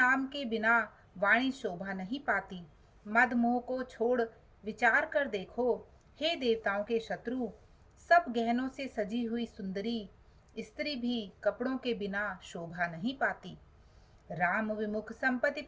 के बिना वाणी शोभा नहीं पाती। मद मोह को छोड़ विचार कर देखो, हे देवताओं के शत्रु, सब गहनों से सजी हुई सुंदरी स्त्री भी कपड़ों के बिना शोभा नहीं पाती। राम विमुख संपत्ति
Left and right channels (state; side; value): identical; both; correlation 1.00